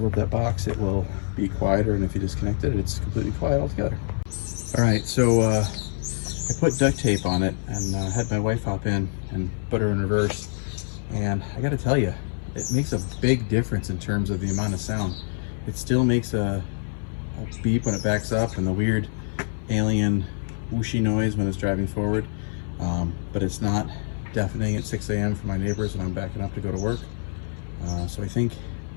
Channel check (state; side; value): silent; right; 61 dB below the other